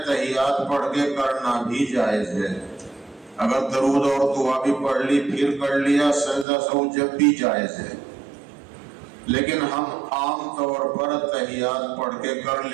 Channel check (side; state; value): left; drops out; at 6.5 s